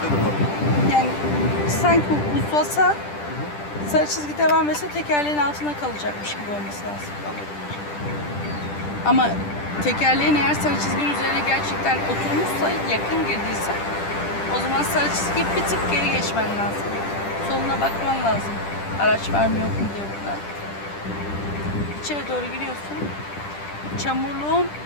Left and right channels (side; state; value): right; late; 10 ms